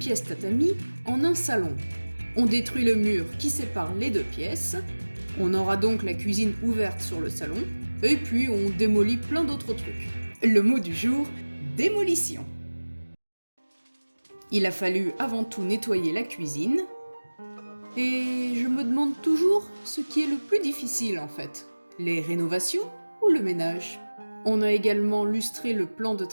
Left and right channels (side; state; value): both; inverted; correlation -1.00